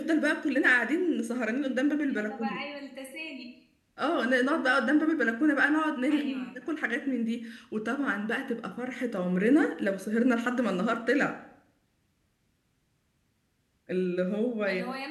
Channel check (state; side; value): identical; both; correlation 1.00